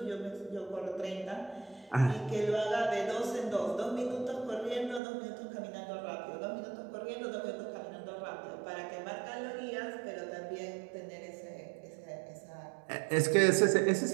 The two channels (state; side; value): drops out; left; at 5.0 s